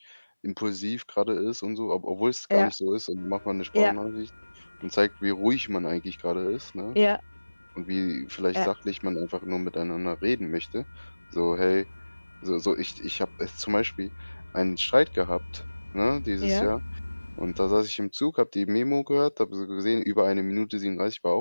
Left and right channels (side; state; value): both; inverted; correlation -1.00